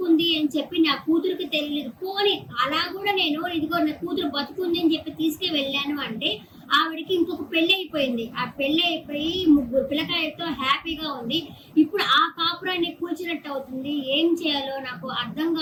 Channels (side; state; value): both; identical; correlation 1.00